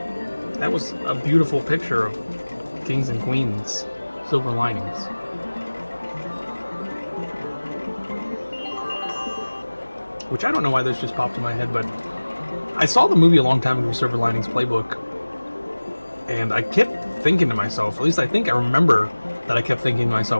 That was a beautiful picture of kings and queens. Silver linings. Which I don't know why this just popped in my head, but I saw the movie a long time ago, Silver Linings Playbook, and I kept thinking to myself, at least I think I remember that I kept thinking to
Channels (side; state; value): both; inverted; correlation -1.00